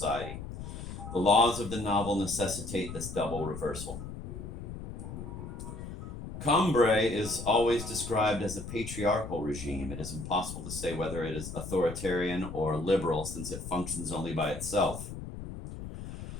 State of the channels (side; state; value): left; noise; rumble, 9 dB below the sound